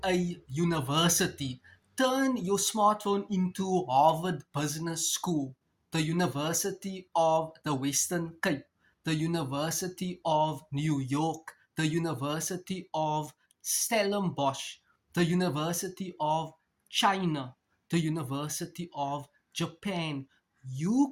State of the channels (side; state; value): both; identical; correlation 1.00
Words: a university. Turn your smartphone into Harvard Business School, the University of the Western Cape, the University of New York, the University of Stellenbosch, the University of China, the University of Japan.